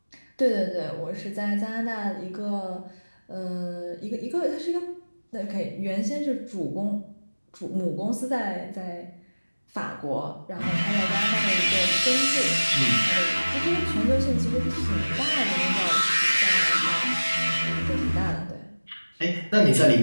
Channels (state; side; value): inverted; both; correlation -1.00